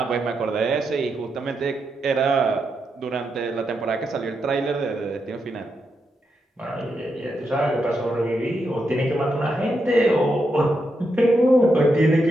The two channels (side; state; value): both; normal; correlation 0.83